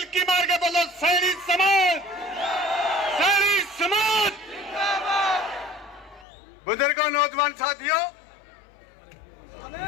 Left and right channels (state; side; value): drops out; right; at 6.2 s